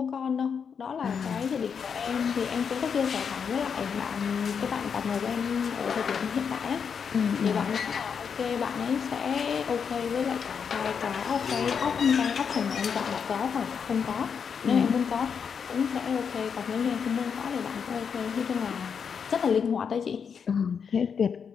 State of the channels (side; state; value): right; quieter; 6.7 dB